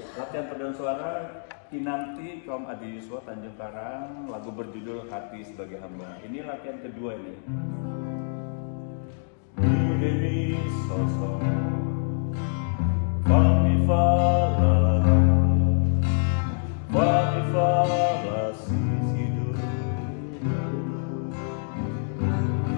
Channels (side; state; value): right; silent; digital silence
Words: Latihan paduan suara Kinanti kaum Adi Yuswa Tanjung Karang, lagu berjudul Hati Sebagai Hamba. Ini latihan kedua ini. Demi sosok Fami fala sisidu.